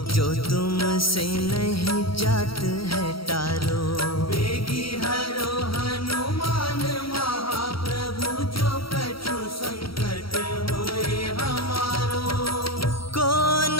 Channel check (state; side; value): late; right; 0.75 ms